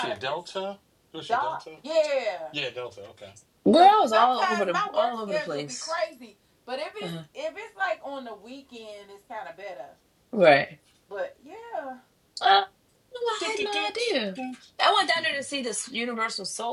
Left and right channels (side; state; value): both; identical; correlation 1.00